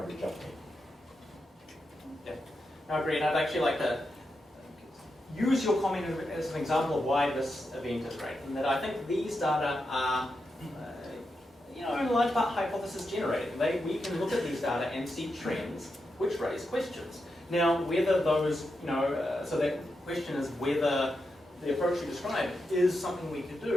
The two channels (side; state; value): both; normal; correlation 0.86